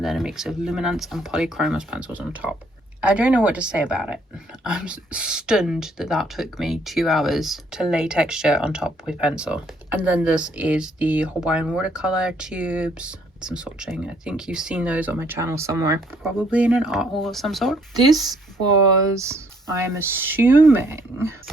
then a mix of luminance and polychromos pencils on top. I don't know what to say about it. I'm stunned that that took me 2 hours to lay texture on top with pencil. And then this is the Hawaiian watercolor tubes. Some swatching. I think you've seen those on my channel somewhere, probably in an art haul of some sort. This was, I'm assuming,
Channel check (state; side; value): normal; both; correlation 0.66